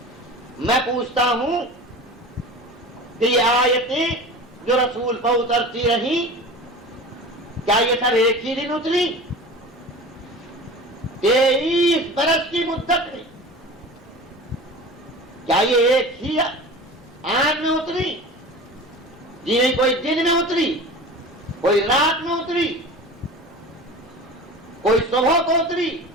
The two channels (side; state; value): both; normal; correlation 0.36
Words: میں پوچھتا ہوں کہ یہ آیتیں جو رسول پر اترتی رہی، کیا یہ سب ایک ہی دن اتری؟ 23 برس کی مدت میں کیا یہ ایک ہی آن میں اتری؟ جی نہیں، کوئی دن میں اتری، کوئی رات میں اتری، کوئی صبح کو اتری،